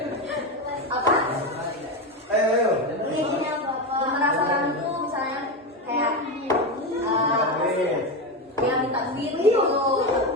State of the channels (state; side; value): normal; both; correlation 0.15